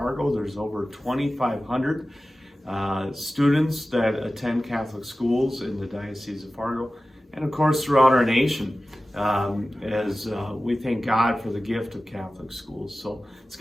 There's over 2,500 students that attend Catholic schools in the Diocese of Fargo, and of course throughout our nation, as we thank God for the gift of Catholic schools. So it's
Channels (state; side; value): normal; both; correlation 0.96